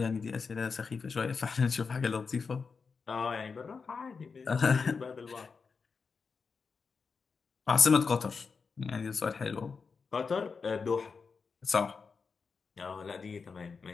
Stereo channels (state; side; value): quieter; right; 5.1 dB